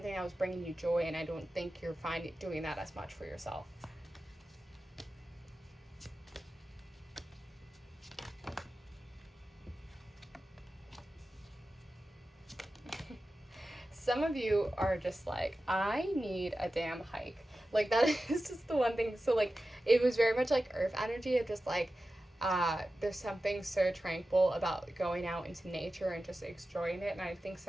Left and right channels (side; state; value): both; normal; correlation 0.94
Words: that was bringing you joy, and I don't think you're finding doing that as much for yourself. Some of you are just like, I need a damn hike. Like, that is just the one thing. So, like, it was very much like earth energy of just like, there's something so tranquil about going out into nature and just enjoying it. And I think